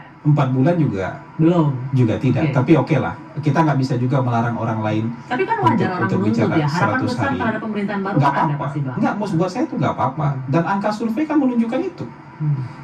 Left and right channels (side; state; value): both; identical; correlation 1.00